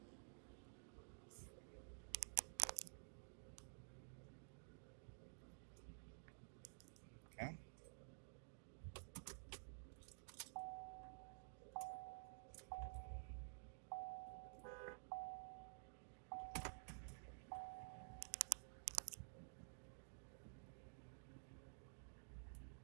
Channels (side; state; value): left; silent; digital silence